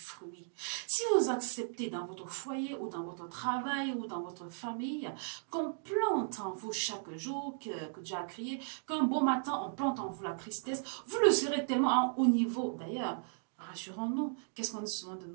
Si vous acceptez dans votre foyer ou dans votre travail ou dans votre famille qu'on plante en vous chaque jour, que Dieu a créé, qu'un beau matin on plante en vous la tristesse, vous le serez tellement à un haut niveau. D'ailleurs, rassurons-nous, qu'est-ce qu'on dit souvent de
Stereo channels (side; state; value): left; silent; digital silence